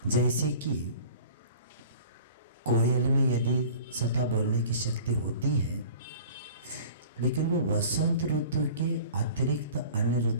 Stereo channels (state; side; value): inverted; both; correlation -0.43